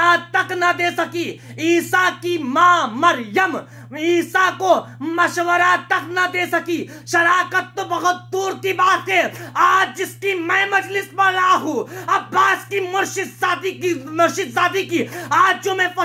तक ना दे सकी। ईसा की मां मरियम ईसा को मशवरा तक ना दे सकी, शराकत तो बहुत दूर की बात है। आज जिसकी मैं मजलिस पढ़ रहा हूं, अब्बास की मुर्शिद सादी की आज जो मैं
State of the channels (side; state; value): both; identical; correlation 1.00